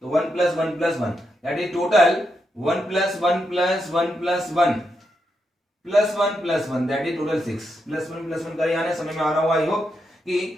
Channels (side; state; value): both; normal; correlation 0.83